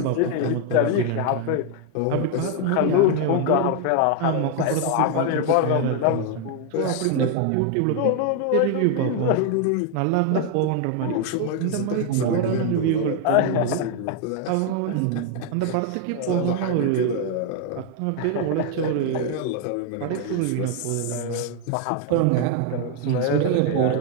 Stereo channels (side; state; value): both; different; correlation 0.00